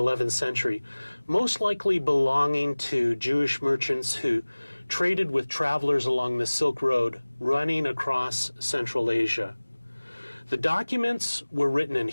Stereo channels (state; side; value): inverted; both; correlation -1.00